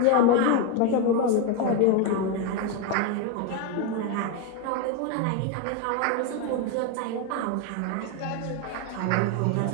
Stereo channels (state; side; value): different; both; correlation 0.02